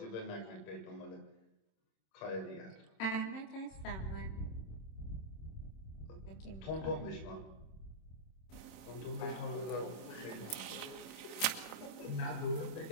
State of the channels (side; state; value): right; late; 26 ms